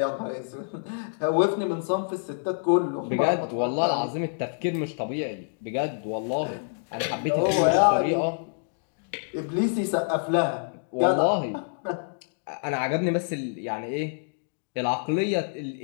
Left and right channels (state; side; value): silent; right; digital silence